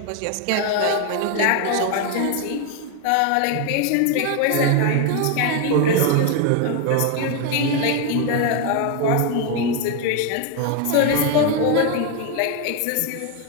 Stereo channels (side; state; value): both; different; correlation 0.01